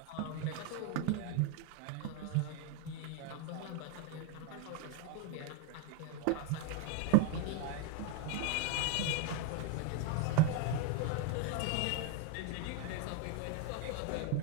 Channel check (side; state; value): both; different; correlation 0.01